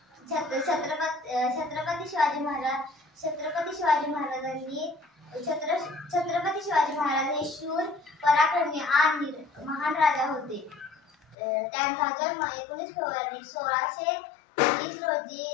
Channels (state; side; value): drops out; right; at 11.4 s